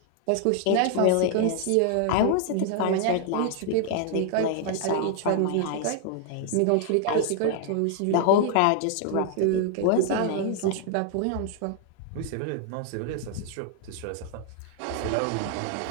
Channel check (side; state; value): both; different; correlation 0.00